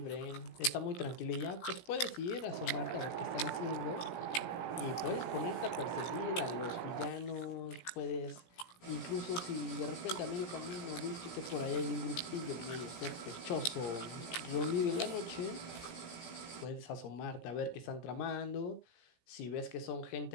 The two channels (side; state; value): right; late; 17 ms